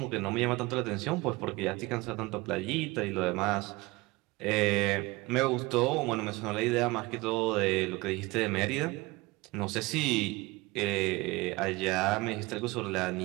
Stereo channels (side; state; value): left; quieter; 22.4 dB